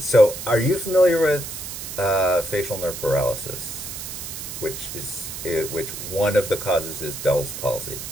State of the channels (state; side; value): noise; right; hiss, 8 dB below the sound